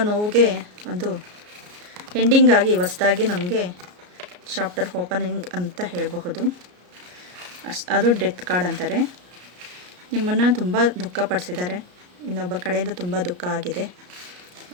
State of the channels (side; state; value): left; late; 33 ms